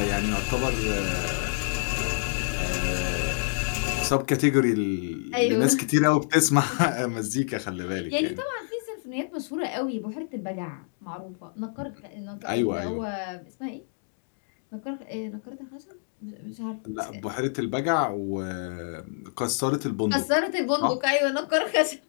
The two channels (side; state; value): right; silent; digital silence